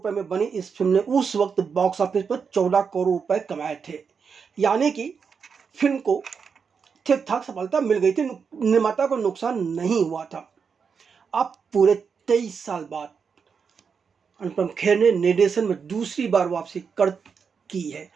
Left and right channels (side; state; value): left; quieter; 6.0 dB